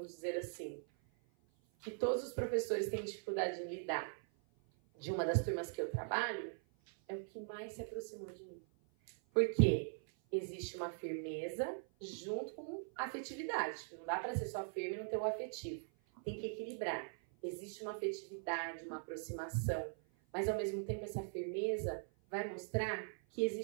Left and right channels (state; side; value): silent; left; 50 dB below the other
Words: dizer assim, que todos os professores têm dificuldade em lidar, de uma das turmas que eu trabalho, é o que mais se aproximou de mim. Porque existe uma firmeza junto com afetividade. Não dá para ser só firme e não ter o afetivo. Tem que equilibrar. Existe uma afetividade, uma aproximação, mas ao mesmo tempo essa firmeza vai mostrar que